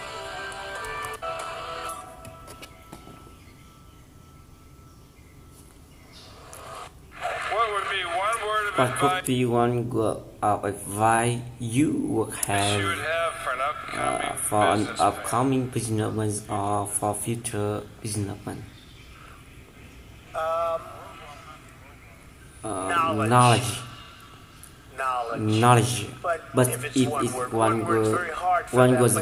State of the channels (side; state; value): both; identical; correlation 1.00